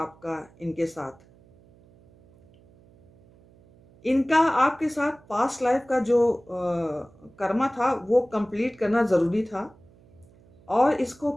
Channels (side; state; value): right; noise; hum, 28 dB below the sound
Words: इनके साथ। इनका आपके साथ पास्ट लाइफ का जो कर्मा था वो कंप्लीट करना ज़रूरी था, और इसको